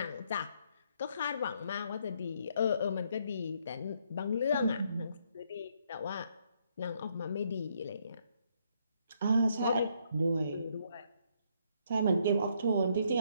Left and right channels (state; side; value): inverted; both; correlation -0.71